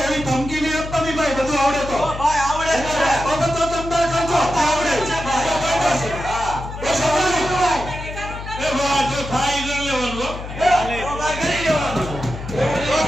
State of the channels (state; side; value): noise; left; hum, 10 dB below the sound